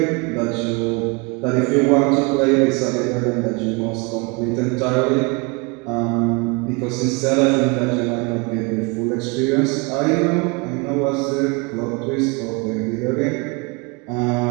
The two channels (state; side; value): quieter; left; 29.3 dB